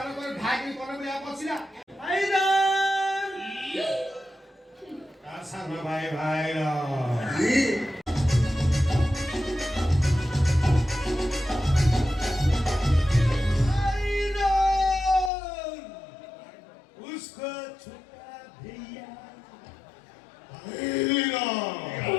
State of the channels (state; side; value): drops out; right; at 15.3 s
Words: ନ କରି ଢାକି ପରେ ବି ବସିଲା। ତା ସାନ ଭାଇ ଭାଇର उसको छोटा भैया